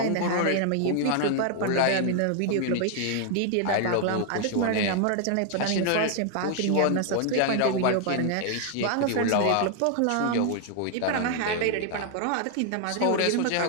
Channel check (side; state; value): both; different; correlation 0.00